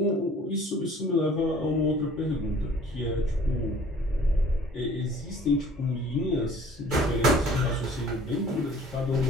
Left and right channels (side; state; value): both; normal; correlation 0.51